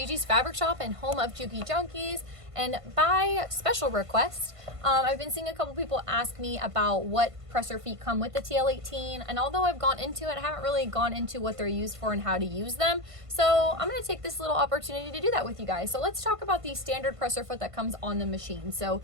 Fabric Shop and home of Juki Junkies. And by special request, I've been seeing a couple people ask me about what presser feet come with the TL18. And although I've gone into it, I haven't really gone into what they're used for and how to use them. So I'm going to take this little opportunity to do that with you guys. So let's talk about the standard presser foot that comes on the machine. So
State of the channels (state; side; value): late; left; 1.5 ms